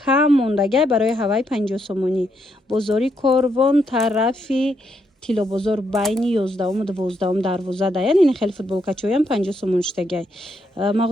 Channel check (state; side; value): normal; both; correlation 0.77